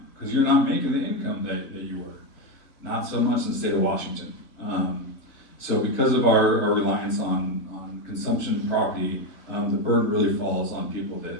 because you're not making the income that you were. Not so much in the state of Washington. So because of our reliance on consumption property, the burden really falls on people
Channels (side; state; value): right; late; 3.7 ms